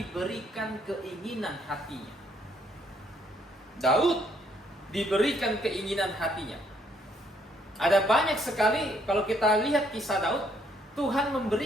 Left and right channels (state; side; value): normal; both; correlation 0.68